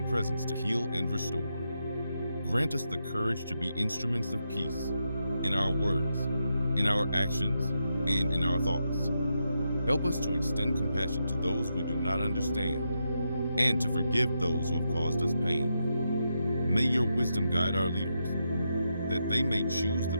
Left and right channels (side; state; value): both; inverted; correlation -0.84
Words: presence to heal and restore. Grant us the courage to be instruments of peace in our words, in our actions, and in our thoughts. Help us to extend compassion to those we do not understand and to forgive those who have caused us pain. May your wisdom guide our leaders, that they may choose the